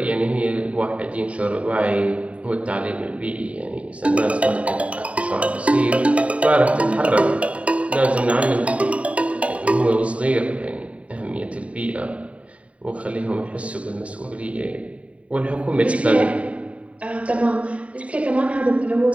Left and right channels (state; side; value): late; left; 0.064 ms